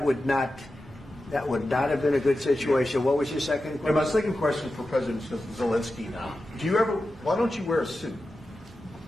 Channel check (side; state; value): both; normal; correlation 0.92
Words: would not have been a good situation. What was your second question? And my second question for President Zelensky. Why don't you wear a suit?